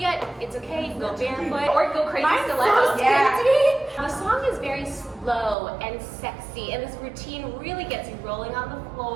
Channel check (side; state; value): left; drops out; at 5.6 s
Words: it's okay. You can go barefoot or go crazy stilettos. The song is very slow and sexy, and this routine really gets you rolling on the